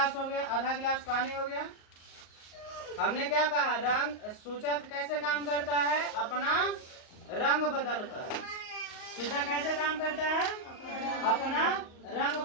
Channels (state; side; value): late; right; 38 ms